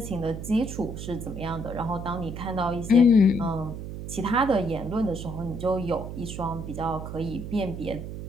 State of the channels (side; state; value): right; noise; hum, 8 dB below the sound